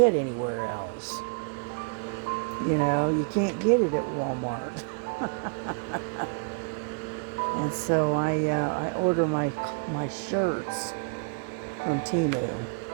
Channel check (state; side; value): quieter; left; 36.3 dB